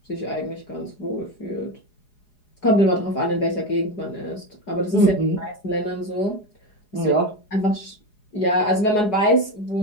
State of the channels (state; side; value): late; right; 4.8 ms